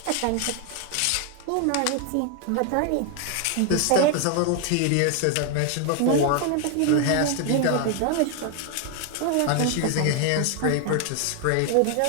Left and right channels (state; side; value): different; both; correlation 0.00